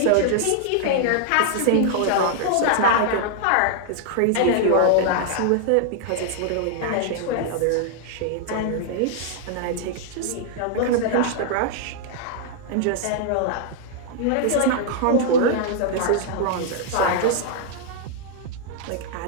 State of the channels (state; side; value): different; both; correlation -0.01